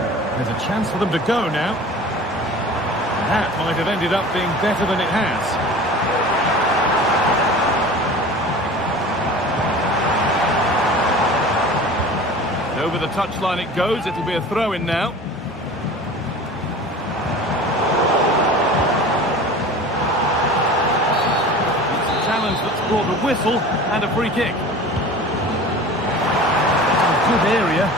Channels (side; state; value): both; normal; correlation 0.39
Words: There's a chance for them to go now. That might have ended up being better than it has. Over the touchline it goes. It'll be a throw-in now. It's a challenge that's brought a whistle and a free kick. It's a good area.